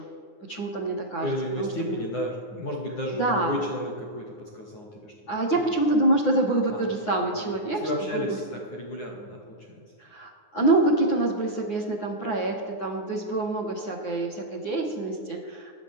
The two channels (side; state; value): right; late; 9.6 ms